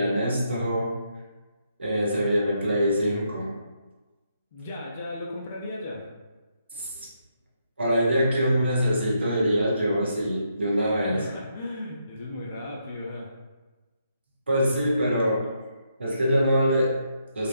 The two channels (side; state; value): both; inverted; correlation -0.78